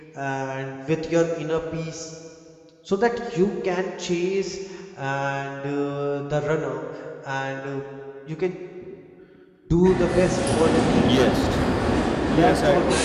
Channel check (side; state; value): both; identical; correlation 1.00